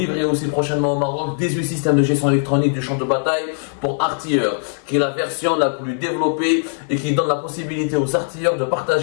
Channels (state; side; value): silent; right; digital silence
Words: aussi prochainement au Maroc 18 systèmes de gestion électronique du champ de bataille pour artilleurs, qui est la version la plus développée et qui donne la possibilité aux artilleurs de